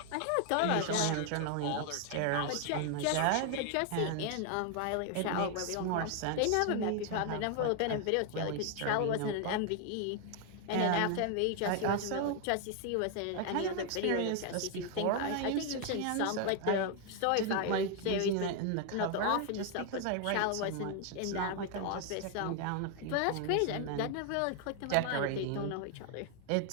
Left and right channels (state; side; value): different; both; correlation 0.00